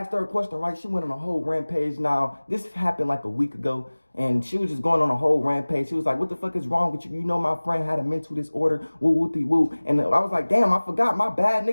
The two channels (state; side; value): inverted; both; correlation -1.00